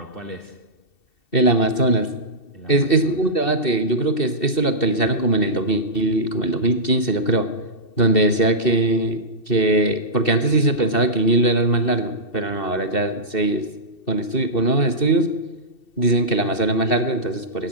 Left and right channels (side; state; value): right; late; 2.7 ms